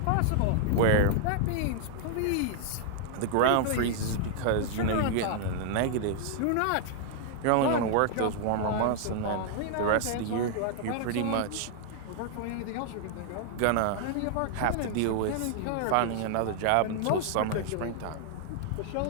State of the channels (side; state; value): both; different; correlation 0.00